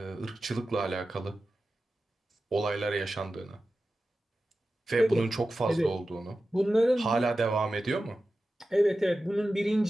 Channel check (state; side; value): normal; both; correlation 0.94